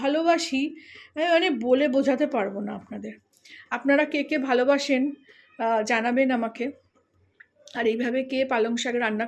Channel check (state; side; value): identical; both; correlation 1.00